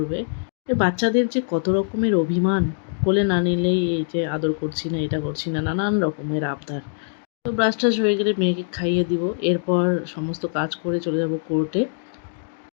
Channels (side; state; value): right; silent; digital silence